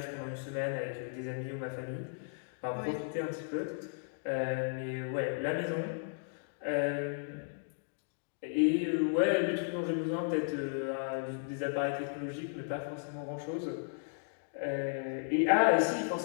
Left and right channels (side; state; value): right; silent; digital silence